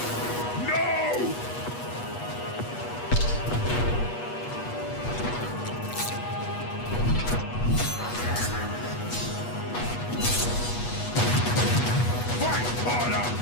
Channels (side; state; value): right; late; 8.3 ms